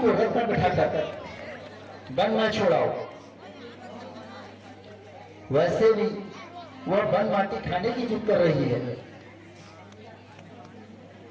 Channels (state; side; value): identical; both; correlation 1.00